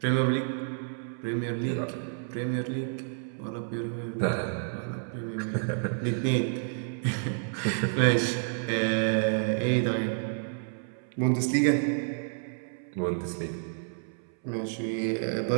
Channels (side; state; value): left; silent; 58 dB below the other